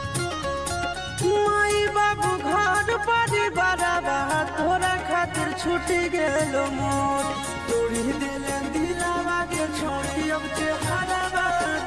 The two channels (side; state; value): both; identical; correlation 1.00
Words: माई बाबू घर परिवार तोरा खातिर छूटी गेलो मोर। तोड़ी दिले दिलावा के छोड़ी अब चेहरा